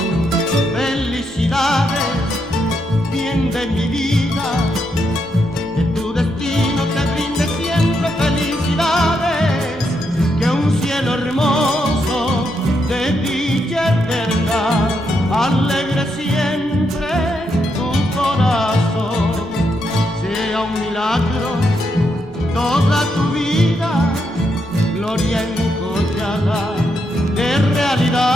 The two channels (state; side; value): normal; both; correlation 0.80